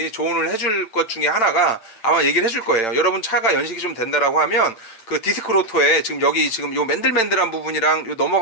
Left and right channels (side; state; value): right; late; 8.9 ms